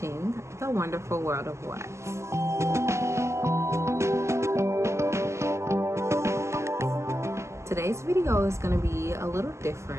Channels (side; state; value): left; late; 0.13 ms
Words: The Wonderful World of What. Today's video is going to be a little